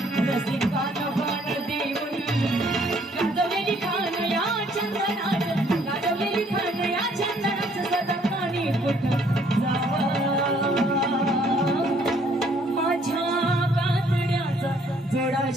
रसिकाचा प्राण देऊन. गाजवलेली खान या चंदनात, गाजवलेली खान या चंदनात सदा पाणी कुठं जावं. माझ्या कातड्याचा जोडा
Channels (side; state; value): both; normal; correlation 0.63